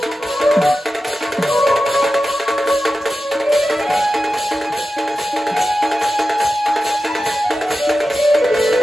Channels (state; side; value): normal; both; correlation 0.92